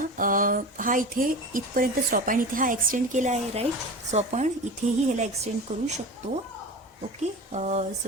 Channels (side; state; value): both; normal; correlation 0.31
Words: हा इथे इथपर्यंत स्टॉप आहे आणि इथे हा एक्सटेंड केला आहे, राईट? सो आपण इथेही ह्याला एक्सटेंड करू शकतो. ओके.